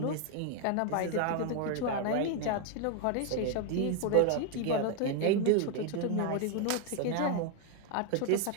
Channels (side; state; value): both; different; correlation 0.00